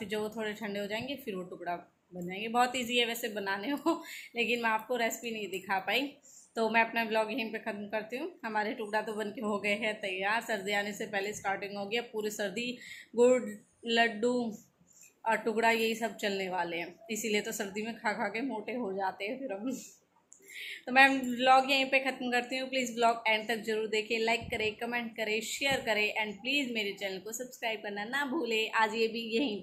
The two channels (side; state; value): both; identical; correlation 1.00